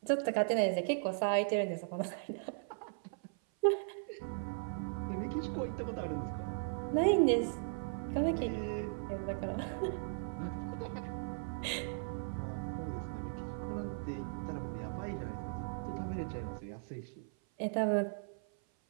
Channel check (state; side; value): silent; left; 53 dB below the other